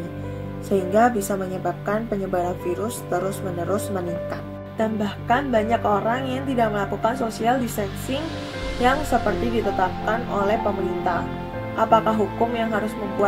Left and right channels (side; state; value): both; identical; correlation 1.00